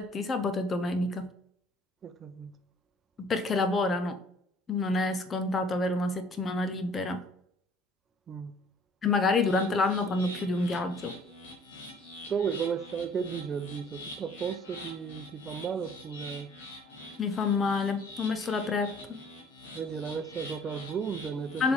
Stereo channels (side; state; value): both; normal; correlation 0.55